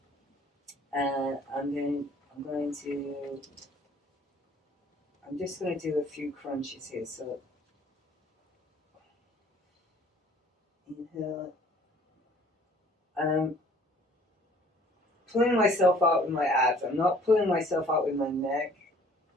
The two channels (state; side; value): normal; both; correlation 0.55